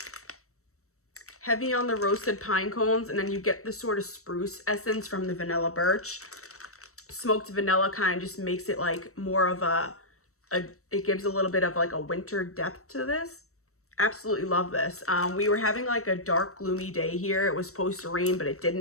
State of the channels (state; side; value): late; right; 0.64 ms